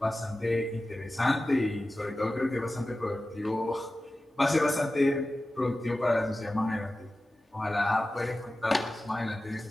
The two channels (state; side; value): normal; both; correlation 0.95